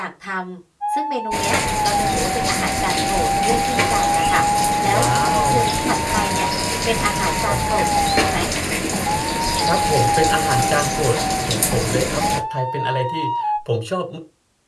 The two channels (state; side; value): identical; both; correlation 1.00